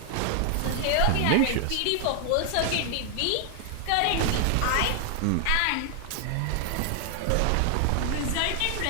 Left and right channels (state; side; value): different; both; correlation 0.00